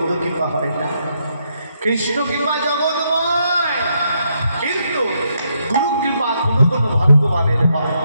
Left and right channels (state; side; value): inverted; both; correlation -0.77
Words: কৃপা হয় না। কৃষ্ণ কৃপা জগৎময়, কিন্তু গুরু কৃপা কোনো কোনো ভগবানের হয়।